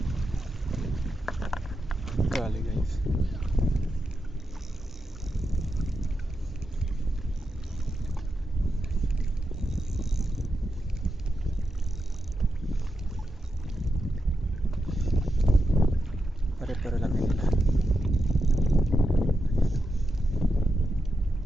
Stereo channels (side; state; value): both; normal; correlation 0.87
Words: Kali guys. Pare-pare lang nila.